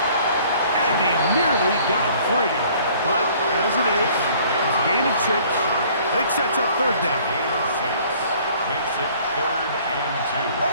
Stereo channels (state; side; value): inverted; both; correlation -0.55